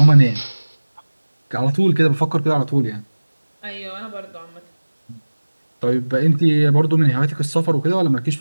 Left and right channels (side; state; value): both; inverted; correlation -1.00